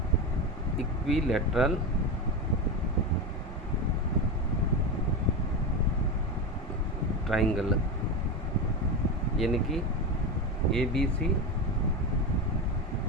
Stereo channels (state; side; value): normal; both; correlation 0.18